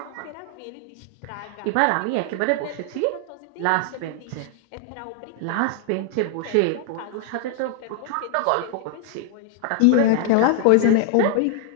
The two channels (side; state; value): both; different; correlation 0.00